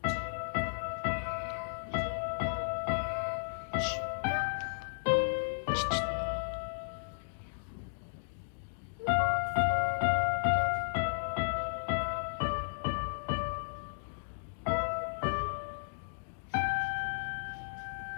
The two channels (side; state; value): right; silent; digital silence